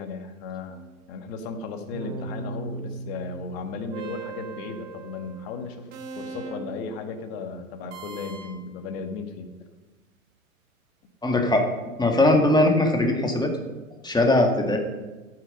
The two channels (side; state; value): both; normal; correlation 0.48